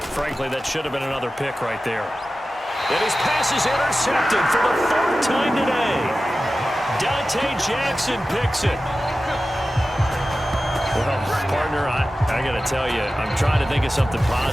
Frankly, that should have been another pick right there. And his pass is intercepted for the 4th time today. Dante Jackson picks it. Well, partner, I got to tell you, I'm trying to think of something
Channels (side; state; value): both; normal; correlation 0.94